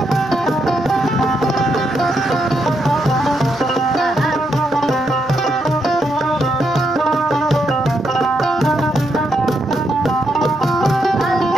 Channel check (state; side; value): normal; both; correlation 0.79